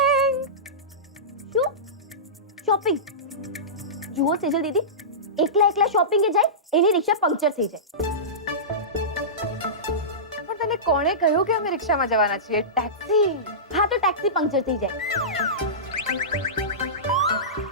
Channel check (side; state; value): both; normal; correlation -0.19